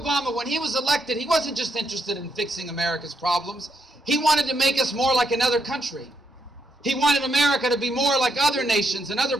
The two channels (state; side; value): normal; both; correlation 0.79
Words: when he was elected, he wasn't just interested in fixing America's problems. He wanted to make us more like another country. He wanted America to be more like other nations and other